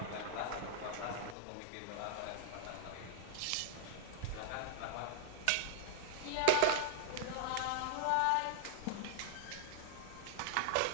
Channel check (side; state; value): both; different; correlation -0.01